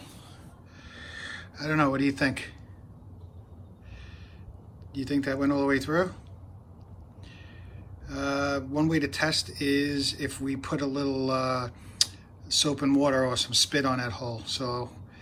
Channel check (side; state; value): both; identical; correlation 1.00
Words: I don't know. What do you think? Do you think that went all the way through? One way to test is if we put a little soap and water or some spit on that hole. So